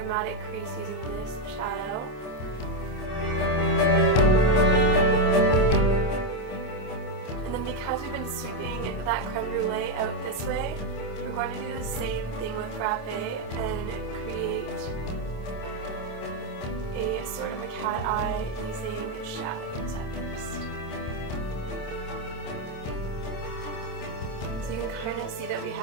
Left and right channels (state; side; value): late; right; 27 ms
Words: crease using this shadow. Because we've been sweeping that creme brulee out this way, we're going to do the same thing with frappe and create a sort of a cat eye using shadows at first. So you can kind of see that we